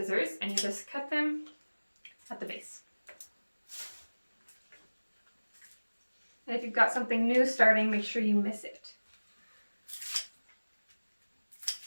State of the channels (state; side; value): inverted; both; correlation -1.00